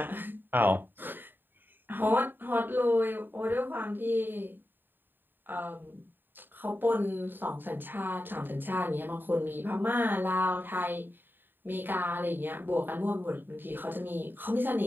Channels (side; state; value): left; late; 0.093 ms